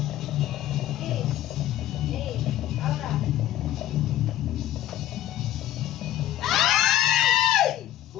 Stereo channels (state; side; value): quieter; right; 13.0 dB